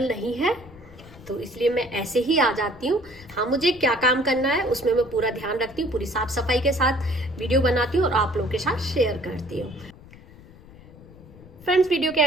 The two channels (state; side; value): noise; left; rumble, 21 dB below the sound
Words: नहीं है, तो इसलिए मैं ऐसे ही आ जाती हूँ। हाँ, मुझे क्या काम करना है उसमें मैं पूरा ध्यान रखती हूँ, पूरी साफ सफाई के साथ वीडियो बनाती हूँ और आप लोगों के साथ शेयर करती हूँ। फ्रेंड्स, वीडियो के